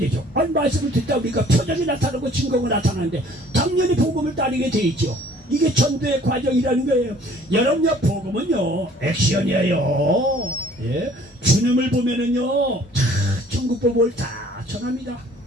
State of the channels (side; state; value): both; normal; correlation 0.54